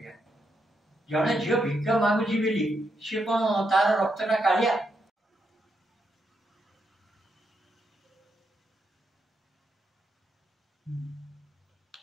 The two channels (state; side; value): normal; both; correlation 0.81